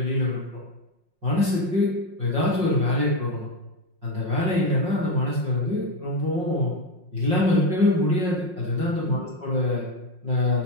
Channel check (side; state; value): left; late; 5.6 ms